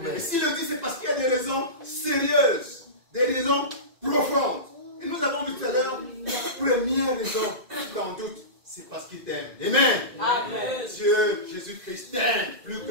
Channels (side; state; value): left; late; 2.0 ms